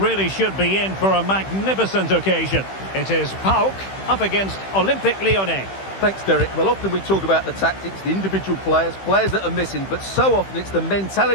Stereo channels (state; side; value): late; right; 15 ms